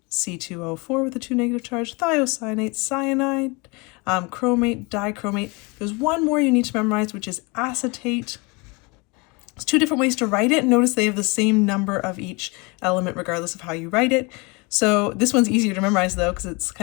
C2O4 with a 2 negative charge, thiocyanate, cyanide, chromate, dichromate. There's one more you need to memorize, which is acetate. There's 2 different ways to write it. Notice they have the same number of each element regardless of how you write it. So this one's easier to memorize though because it's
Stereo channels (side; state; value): right; quieter; 28.0 dB